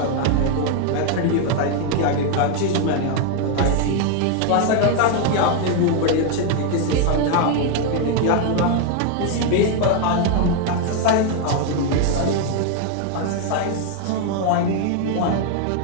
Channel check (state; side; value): different; both; correlation 0.00